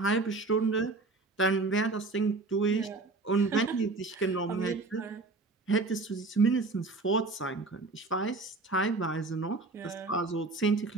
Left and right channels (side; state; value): left; quieter; 3.5 dB